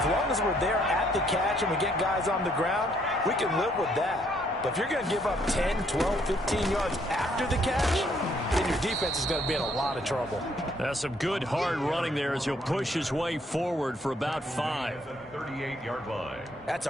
long as we're there at the catch and we get guys on the ground, we can live with that. But if you're going to give up 10, 12, 15 yards after the catch, then your defense is going to be in a lot of trouble. That's some good hard running there as he'll push his way forward for about 5. 38-yard line. That's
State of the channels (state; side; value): normal; both; correlation 0.68